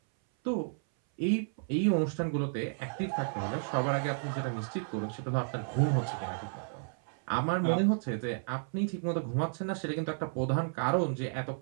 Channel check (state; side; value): silent; left; 56 dB below the other